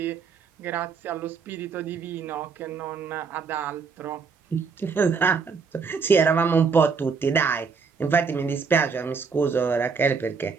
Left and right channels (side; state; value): left; quieter; 5.3 dB